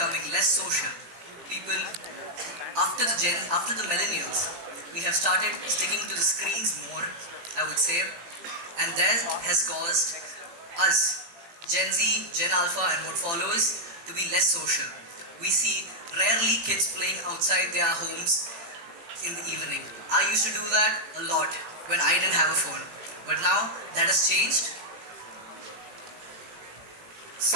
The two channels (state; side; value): late; left; 17 ms